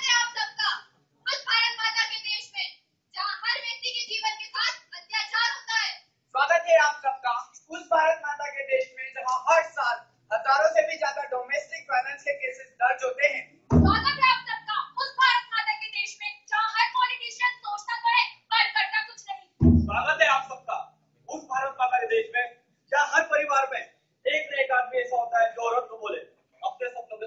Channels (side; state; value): both; identical; correlation 1.00